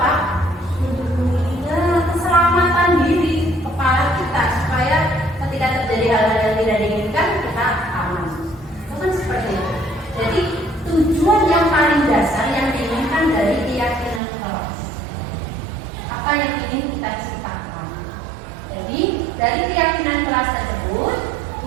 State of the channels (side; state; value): left; drops out; at 14.2 s